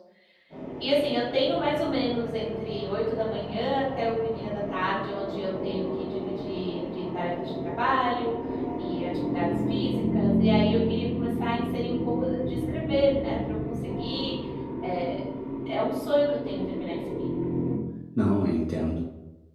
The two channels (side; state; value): both; identical; correlation 1.00